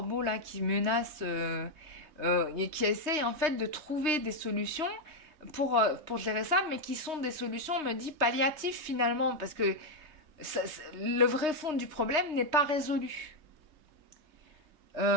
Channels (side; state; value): left; late; 3.2 ms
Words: là qui menacent, et qui essaye en fait de trouver des solutions pour gérer ça, mais qui sont des solutions, on me dit, palliatives finalement, parce que le vrai fond du problème n'est pas résolu.